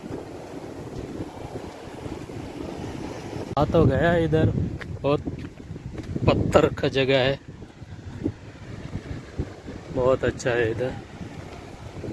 आ तो गया इधर, बहुत पत्थर का जगह है, बहुत अच्छा है इधर।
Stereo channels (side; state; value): both; identical; correlation 1.00